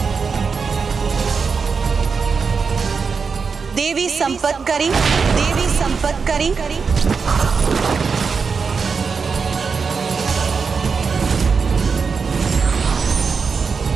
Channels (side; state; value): left; quieter; 5.3 dB